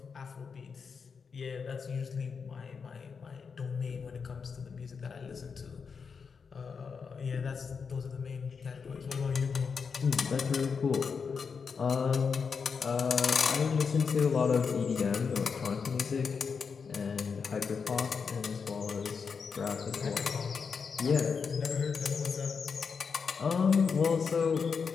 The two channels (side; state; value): right; quieter; 5.7 dB